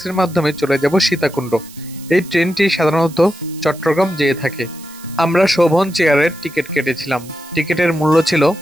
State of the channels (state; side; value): noise; right; hiss, 20 dB below the sound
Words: মাধ্যমে চলে যাব সীতাকুণ্ড। এই ট্রেনটি সাধারণত চট্টগ্রাম যেয়ে থাকে। আমরা শোভন চেয়ারের টিকিট কেটেছিলাম। টিকিটের মূল্য ছিল